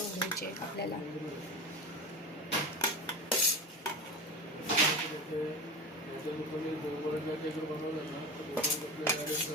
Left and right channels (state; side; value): normal; both; correlation 0.27